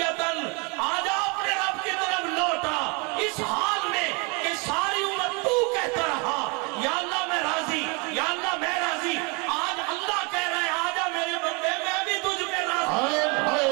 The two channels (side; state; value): left; quieter; 31.3 dB